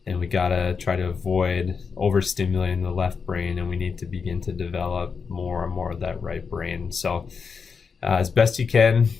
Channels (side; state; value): right; quieter; 5.6 dB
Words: And we gotta try to avoid overstimulating the left brain, and we need to begin to develop more and more of that right brain. So as best you can,